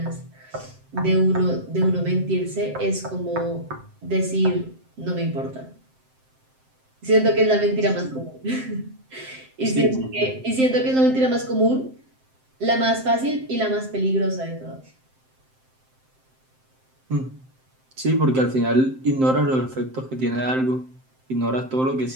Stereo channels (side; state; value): left; late; 7.7 ms